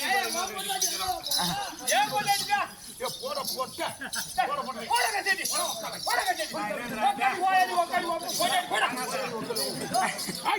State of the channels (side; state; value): both; identical; correlation 1.00